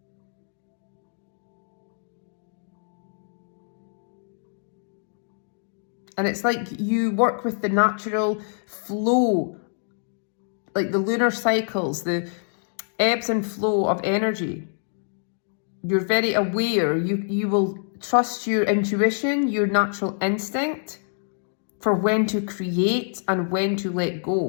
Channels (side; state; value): right; silent; digital silence